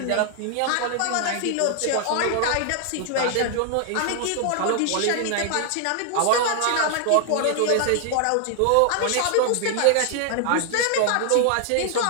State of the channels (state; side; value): different; both; correlation 0.00